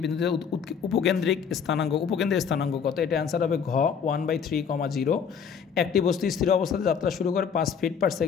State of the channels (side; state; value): right; quieter; 6.9 dB